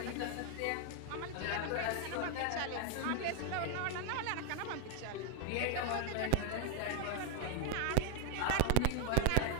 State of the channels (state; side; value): different; both; correlation 0.01